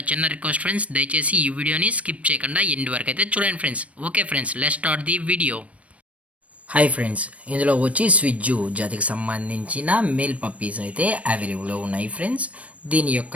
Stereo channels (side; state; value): left; late; 0.065 ms